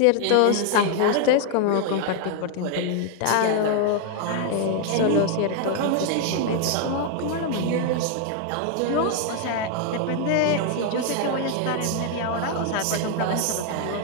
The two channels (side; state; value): both; different; correlation 0.00